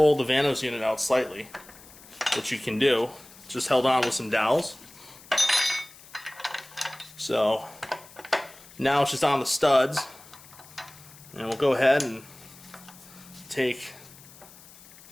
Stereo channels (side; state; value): left; noise; hiss, 21 dB below the sound